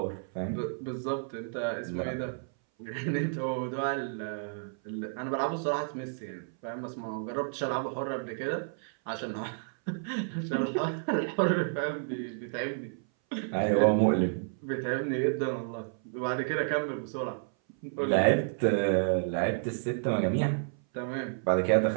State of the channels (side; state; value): left; silent; 57 dB below the other